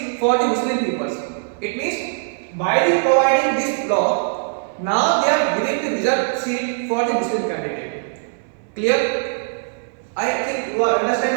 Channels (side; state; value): left; silent; 60 dB below the other